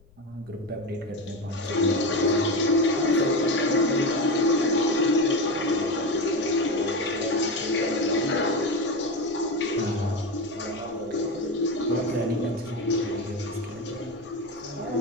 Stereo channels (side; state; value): left; noise; rumble, 28 dB below the sound